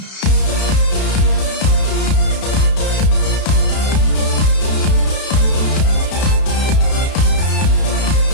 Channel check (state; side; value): late; right; 32 ms